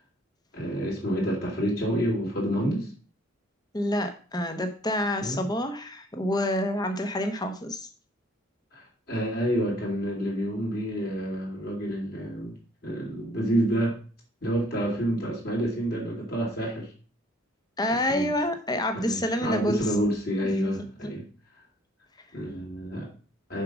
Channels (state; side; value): normal; both; correlation 0.60